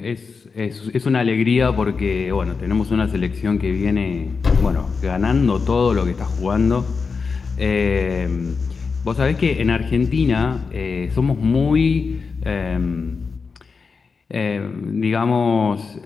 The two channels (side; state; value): right; quieter; 5.0 dB